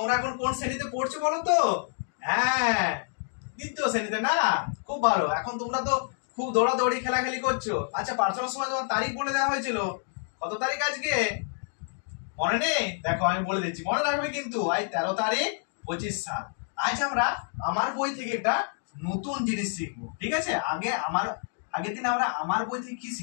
এখন কোন শ্রেণীতে পড়ছো বলো তো? হ্যাঁ, দ্বিতীয় শ্রেণীতে না? খুব ভালো। এখন তোমরা তো খুব দৌড়াদৌড়ি খেলাখেলি করছো। আচ্ছা, প্রার্থনার সময় তোমার তারিখ বলে দেওয়া হয়েছিল, কত তারিখ আজকে মনে নেই? দেখো আমি বলে দিচ্ছি, মনে রাখবে কিন্তু। আজ 13 তারিখ 25 সাল। আজ আমরা আমার বই থেকে একটা নতুন জিনিস শিখবো, ঠিক আছে? আগের দিন আমরা আমার বই থেকে কি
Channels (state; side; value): silent; right; 59 dB below the other